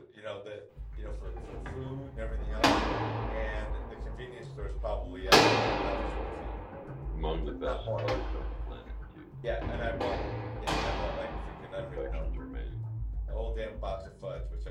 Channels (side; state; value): both; identical; correlation 1.00